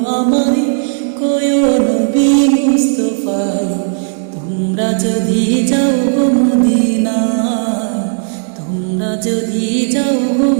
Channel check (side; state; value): left; silent; 69 dB below the other